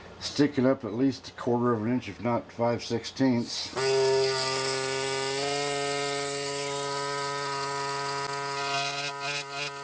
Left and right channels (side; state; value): both; identical; correlation 1.00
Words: sticking up at least 1/4 of an inch, if not 5/16.